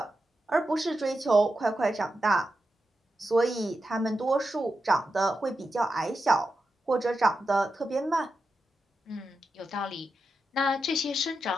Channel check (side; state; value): both; normal; correlation 0.89